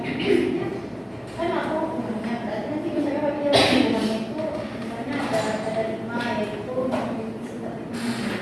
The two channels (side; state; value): both; identical; correlation 1.00